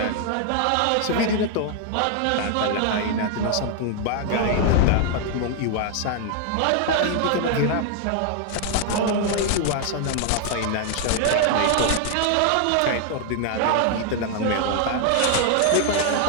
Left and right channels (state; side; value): different; both; correlation 0.00